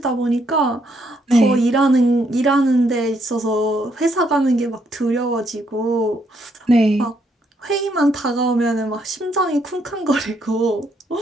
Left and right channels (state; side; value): normal; both; correlation 0.73